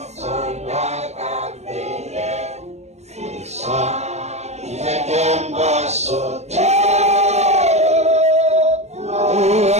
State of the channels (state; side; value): late; left; 0.32 ms